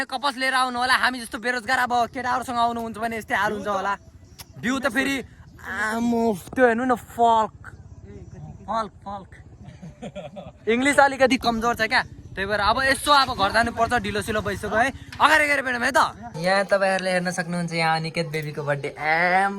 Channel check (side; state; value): both; identical; correlation 1.00